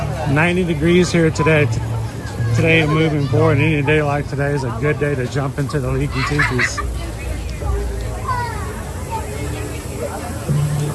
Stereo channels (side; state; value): both; identical; correlation 1.00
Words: $90 degrees here today. Today and moving forward, any day like today is a good day to jump into the leaky tikis.